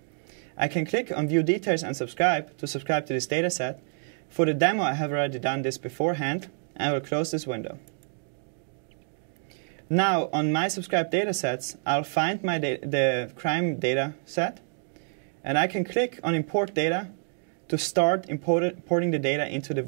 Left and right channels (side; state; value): left; silent; 57 dB below the other